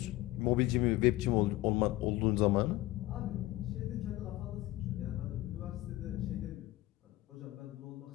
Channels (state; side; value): quieter; right; 17.4 dB